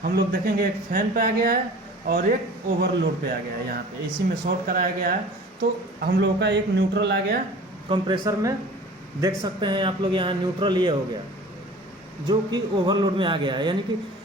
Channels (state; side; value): normal; both; correlation 0.43